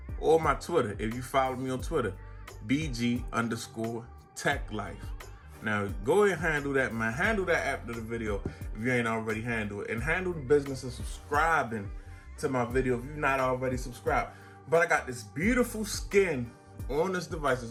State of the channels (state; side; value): identical; both; correlation 1.00